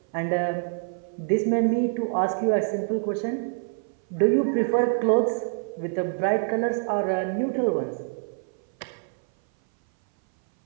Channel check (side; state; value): left; silent; 58 dB below the other